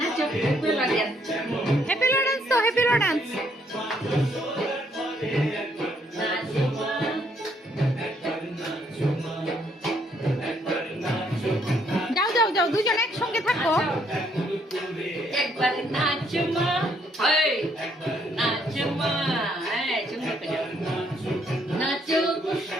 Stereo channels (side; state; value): both; normal; correlation 0.69